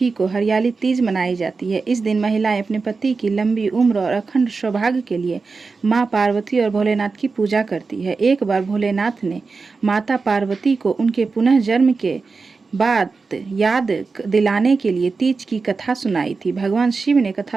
को हरियाली तीज मनाई जाती है। इस दिन महिलाएं अपने पति की लंबी उम्र और अखंड सौभाग्य के लिए मां पार्वती और भोलेनाथ की पूजा करती है। एक बार भोलेनाथ ने माता पार्वती को उनके पुनः जन्म के बाद याद दिलाने के लिए तीज की कथा सुनाई थी। भगवान शिव ने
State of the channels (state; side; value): quieter; left; 4.4 dB